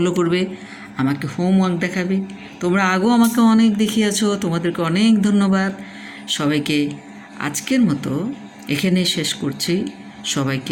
করবে, আমাকে হোমওয়ার্ক দেখাবে। তোমরা আগেও আমাকে অনেক দেখিয়েছো, তোমাদেরকে অনেক ধন্যবাদ। সবাইকে আজকের মতো এখানে শেষ করছি।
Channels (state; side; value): identical; both; correlation 1.00